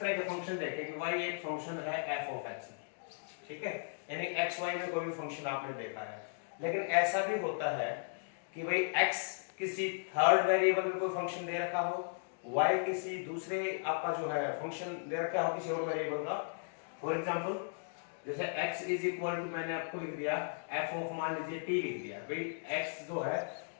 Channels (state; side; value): silent; right; digital silence